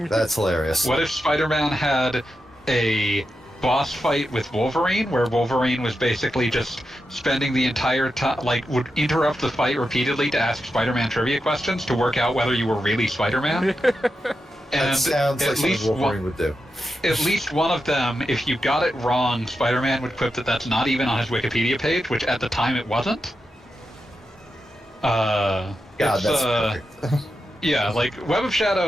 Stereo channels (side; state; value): both; normal; correlation 0.88